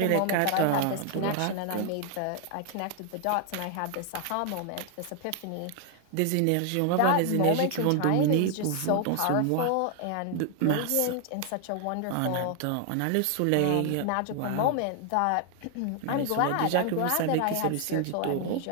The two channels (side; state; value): both; different; correlation 0.00